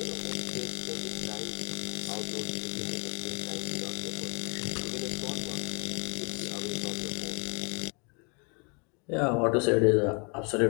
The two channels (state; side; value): quieter; right; 34.0 dB